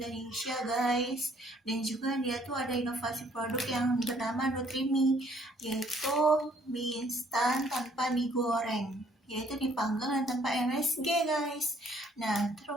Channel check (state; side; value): normal; both; correlation 0.63